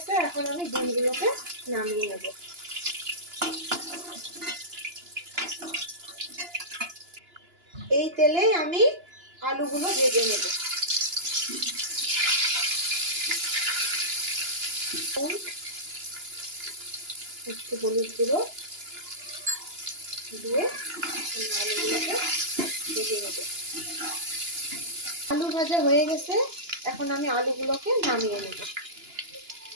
এখন আমি ডিমগুলোকে নামিয়ে নেব। এই তেলে আমি আলুগুলো ভেজে নেব। একটু হলুদ গুঁড়ো দিয়ে আলুগুলোকে ভেজে নেব। আলু ভাজা হয়ে গেছে। এখন আমি আলুগুলোকে নামিয়ে নেব।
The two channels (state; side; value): late; left; 2.9 ms